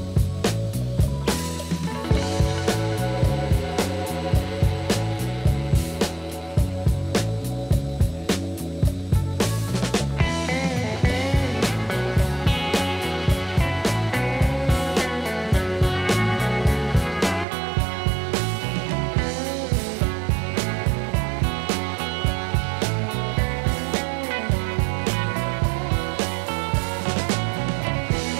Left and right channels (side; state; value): left; drops out; at 17.4 s